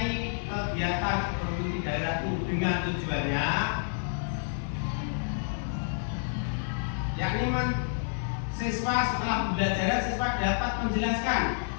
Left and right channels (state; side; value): silent; right; digital silence